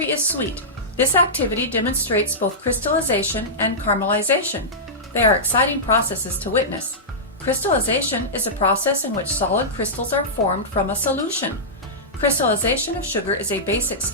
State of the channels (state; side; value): normal; both; correlation -0.14